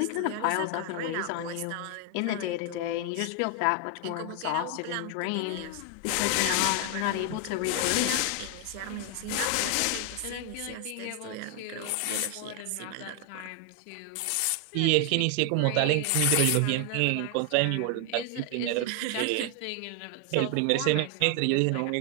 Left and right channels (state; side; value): different; both; correlation 0.01